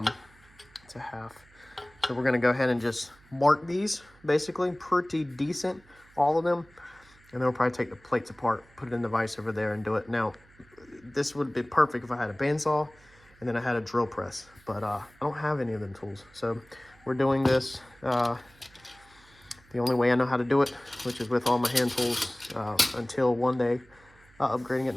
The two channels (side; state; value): right; noise; hum, 27 dB below the sound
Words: It's a half. So we're gonna go ahead and just mark these, basically pretty decent, all of them, and then we'll probably take the plates apart, put it in the vise over there, and do it. Now, this would be perfect if I had a bandsaw and then I had a drill press, but I don't have any of them tools. So we're doing this the only way I know how to do it, which is with all my hand tools, until one day upgrading at